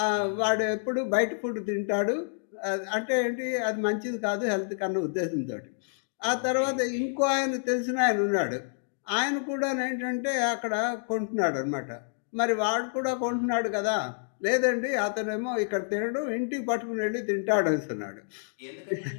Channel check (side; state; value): right; silent; digital silence